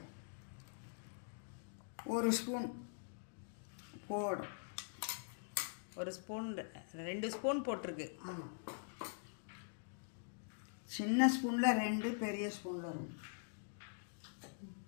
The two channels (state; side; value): silent; right; digital silence